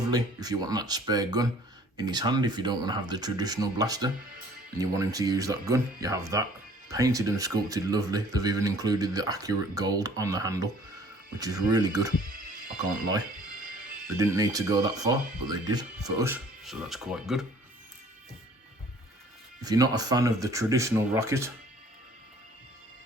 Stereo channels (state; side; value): normal; both; correlation 0.54